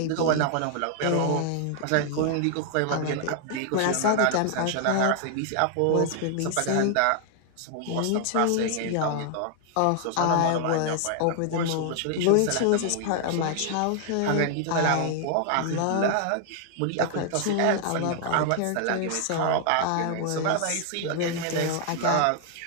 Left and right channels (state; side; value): different; both; correlation 0.00